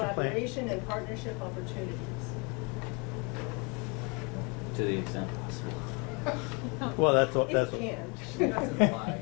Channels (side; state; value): right; quieter; 31.9 dB